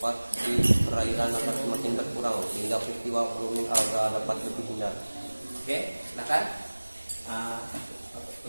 di perairan akan semakin berkurang sehingga peristiwa blooming alga dapat lebih hindar. Oke, silakan.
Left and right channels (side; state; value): both; inverted; correlation -1.00